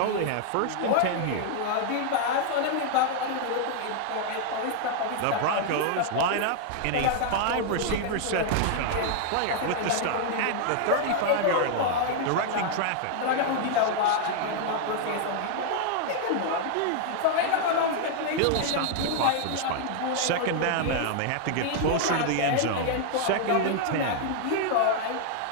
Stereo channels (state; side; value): different; both; correlation 0.00